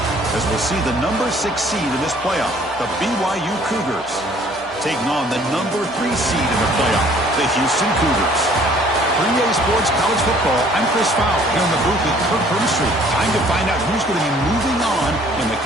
As we'll see the number 6 seed in this playoff, the BYU Cougars, taking on the number 3 seed in the playoff, the Houston Cougars. For EA Sports College Football, I'm Chris Fowler here in the booth with Kirk Herbstreit. Time to find out who's going to be moving on in the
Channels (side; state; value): both; normal; correlation 0.57